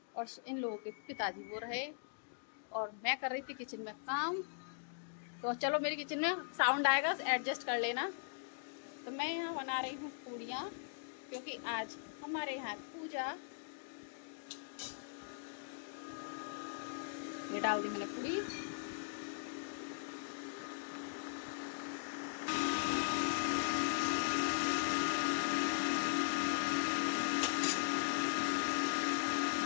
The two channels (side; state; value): right; silent; digital silence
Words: और इन लोगों के पिताजी वो रहे और मैं कर रही थी किचन में काम। तो चलो, मेरी किचन में साउंड आएगा, एडजस्ट कर लेना। तो मैं यहाँ बना रही हूँ पूड़ियाँ क्योंकि आज हमारे यहाँ पूजा। ये डाल दी मैंने पूड़ी।